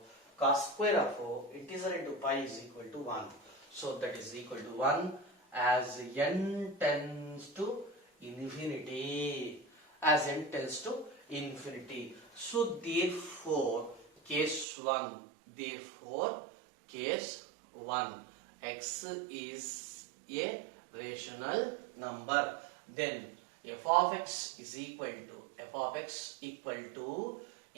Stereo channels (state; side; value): drops out; left; at 14.7 s